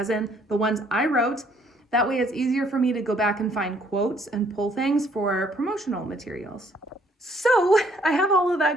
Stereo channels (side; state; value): both; normal; correlation 0.64